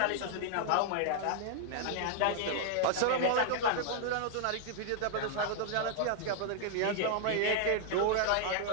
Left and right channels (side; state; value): both; different; correlation 0.00